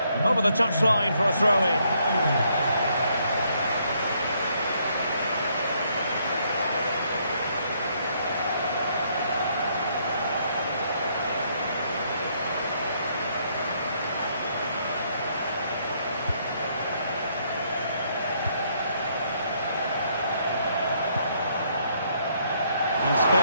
Over the touchline for a throw-in.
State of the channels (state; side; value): inverted; both; correlation -0.71